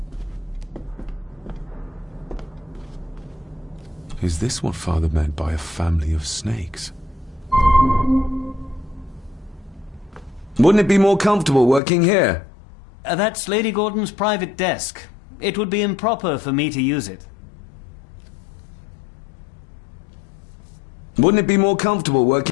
Is this what Father meant by a family of snakes? Wouldn't it be more comfortable working here? That's Lady Gordon's private desk. It would be improper for me to use it. Wouldn't it be more comfortable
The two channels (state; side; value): drops out; right; at 11.8 s